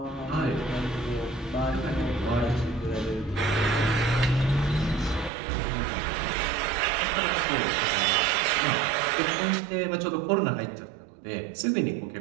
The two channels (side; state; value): left; drops out; at 5.3 s